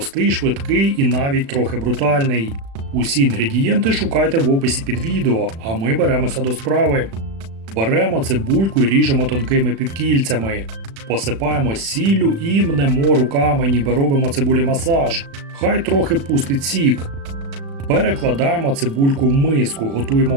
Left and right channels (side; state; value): left; late; 36 ms